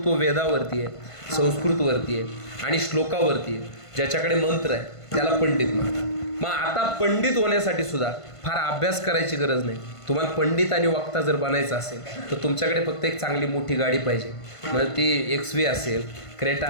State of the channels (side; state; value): right; late; 1.5 ms